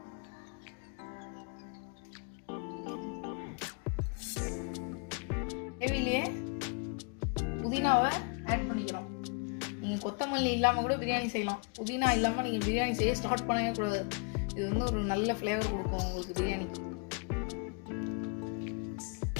கிரேவிலேயே புதினாவை ஆட் பண்ணிக்கிறோம். நீங்கள் கொத்தமல்லி இல்லாமல் கூட பிரியாணி செய்யலாம். புதினா இல்லாமல் நீங்கள் பிரியாணி செய்ய ஸ்டார்ட் பண்ணவே கூடாது. இது வந்து ஒரு நல்ல ஃப்ளேவர் கொடுக்கும் உங்களுக்கு பிரியாணிக்கு.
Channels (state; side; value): quieter; right; 34.8 dB